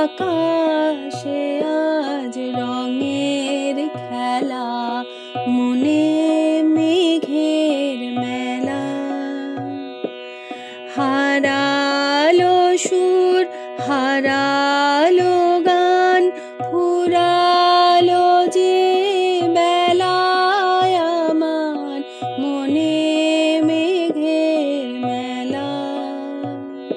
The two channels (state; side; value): identical; both; correlation 1.00